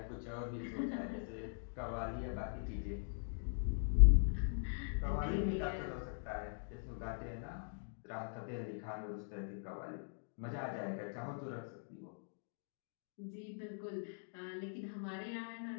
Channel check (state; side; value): silent; right; digital silence